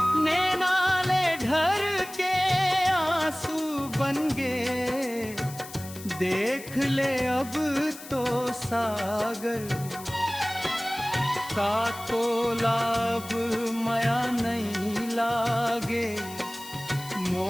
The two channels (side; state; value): left; noise; hiss, 15 dB below the sound